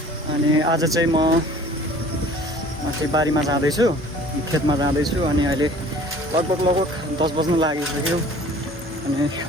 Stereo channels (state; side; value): normal; both; correlation 0.49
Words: अनि आज चाहिँ म माथि बारीमा जाँदैछु, खेतमा जाँदैछु। अनि अहिले लगभग 10 बज्न लागिसक्यो। अनि